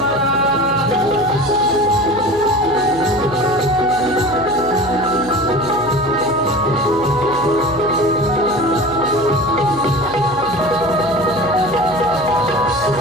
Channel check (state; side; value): noise; left; hum, 15 dB below the sound